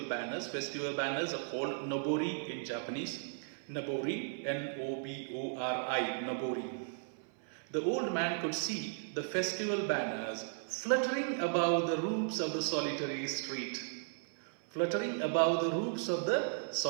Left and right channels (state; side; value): silent; left; 54 dB below the other